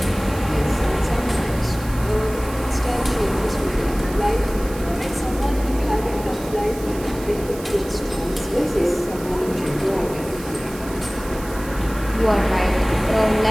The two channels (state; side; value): noise; right; hiss, 16 dB below the sound